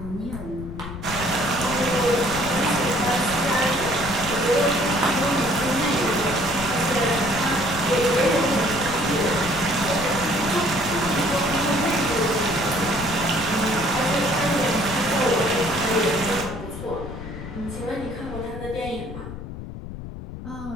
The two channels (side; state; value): left; noise; rumble, 10 dB below the sound